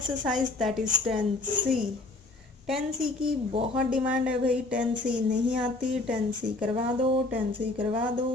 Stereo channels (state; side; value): quieter; right; 3.0 dB